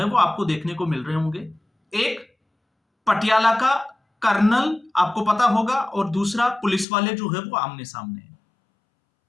वो आपको देखने को मिल रहे होंगे। एक पटियाला का कर्नल, आपको पता होगा, और दूसरा पुलिस वाले जो है वो आमने सामने हैं।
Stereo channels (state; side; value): drops out; right; at 6.9 s